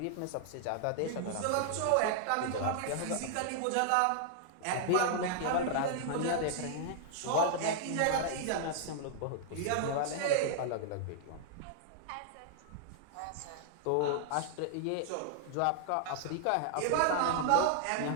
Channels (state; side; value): different; both; correlation -0.01